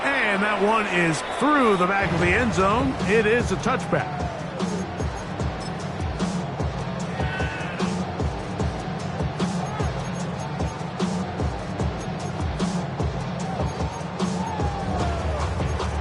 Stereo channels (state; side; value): identical; both; correlation 1.00